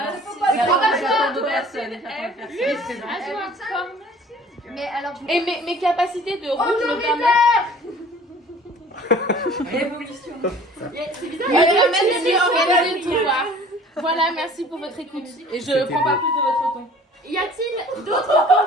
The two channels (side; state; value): both; normal; correlation 0.49